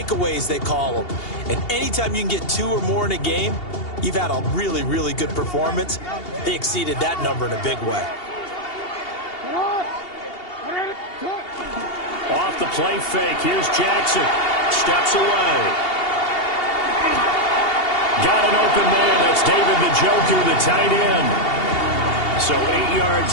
they call them. And anytime you can get 2 or more in a game, you've had a really, really good performance. They exceeded that number in a big way. Off the play fake. Here's Jackson. Steps away. Got an open man. That's David Njoku, the tight end. So 8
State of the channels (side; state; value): right; late; 2.8 ms